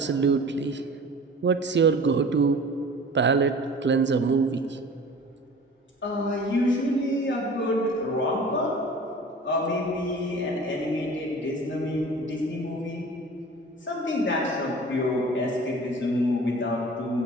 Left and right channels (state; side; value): normal; both; correlation 0.42